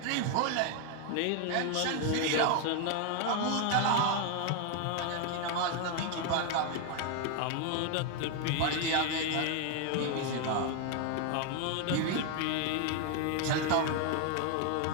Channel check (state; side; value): different; both; correlation 0.01